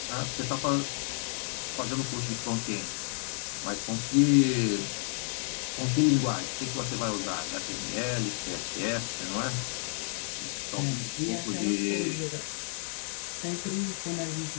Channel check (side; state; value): right; silent; 57 dB below the other